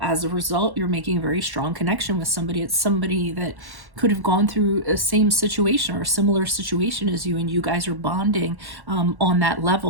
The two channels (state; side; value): late; left; 1.1 ms